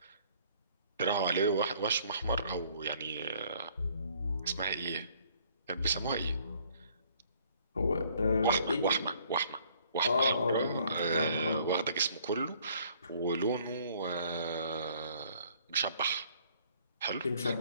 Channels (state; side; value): inverted; both; correlation -0.61